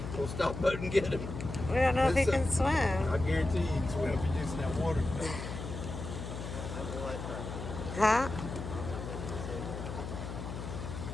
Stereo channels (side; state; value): left; noise; hum, 7 dB below the sound